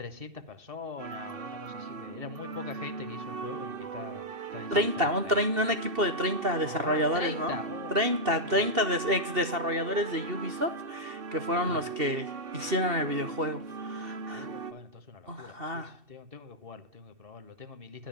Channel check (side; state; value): left; late; 2.7 ms